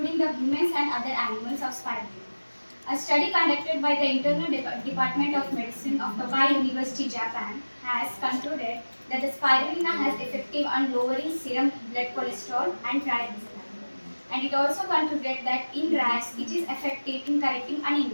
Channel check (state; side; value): inverted; both; correlation -1.00